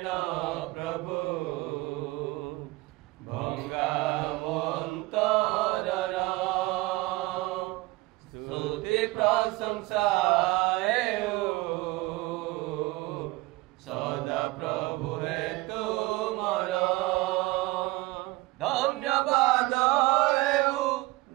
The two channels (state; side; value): quieter; left; 21.0 dB